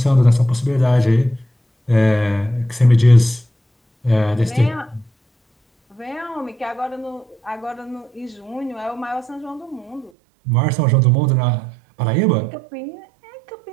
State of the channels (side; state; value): left; drops out; at 10.1 s